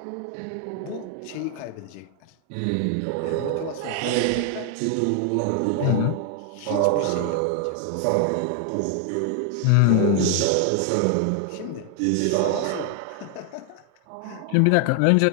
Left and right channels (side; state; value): both; different; correlation 0.00